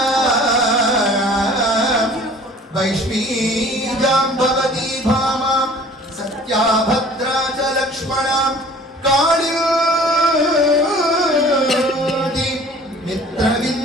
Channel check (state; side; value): normal; both; correlation 0.49